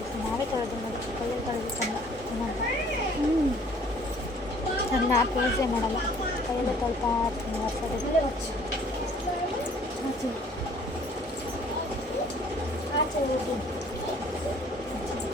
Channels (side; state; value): both; normal; correlation 0.56